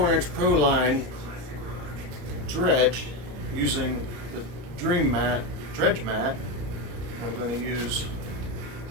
Pro Line dredge using the dredge mat. I'm going to use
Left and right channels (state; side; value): late; left; 34 ms